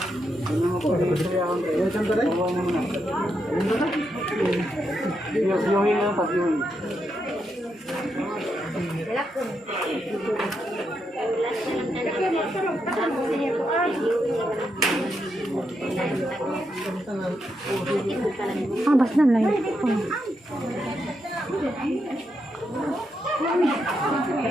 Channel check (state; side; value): normal; both; correlation 0.82